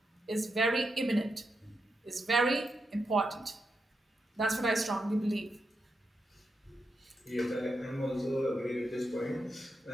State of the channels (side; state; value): both; normal; correlation 0.85